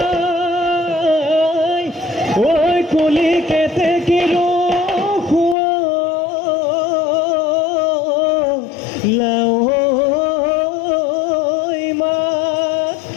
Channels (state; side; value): drops out; right; at 5.6 s